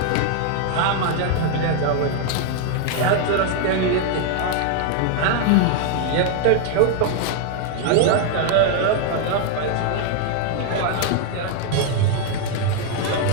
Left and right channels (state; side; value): different; both; correlation 0.00